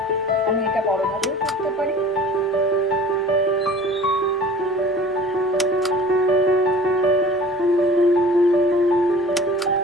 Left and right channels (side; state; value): both; normal; correlation 0.45